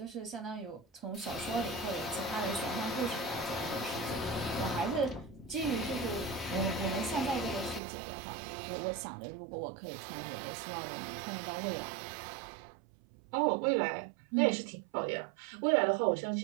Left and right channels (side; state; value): left; drops out; at 7.8 s